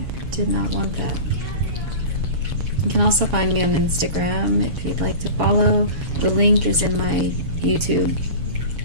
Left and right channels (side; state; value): left; late; 7.0 ms